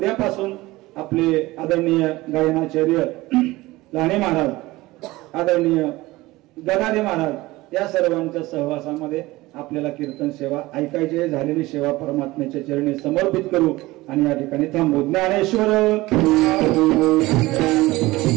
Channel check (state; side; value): quieter; left; 19.5 dB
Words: आपले आदरणीय गायनाचार्य लाणे महाराज, आदरणीय गदादे महाराज, या सर्वांच्या सहवासामध्ये आपल्याला कीर्तन सेवा ऐकायची. झालेली सेवा परमात्म्याच्या चरणी समर्पित करू आणि या ठिकाणी थांबू. ज्ञानेश्वर